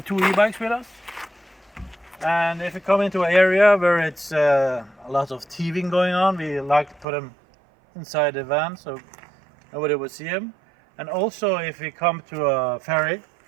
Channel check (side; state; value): left; drops out; at 7.1 s